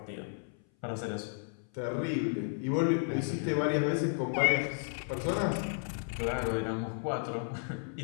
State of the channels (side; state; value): right; silent; 56 dB below the other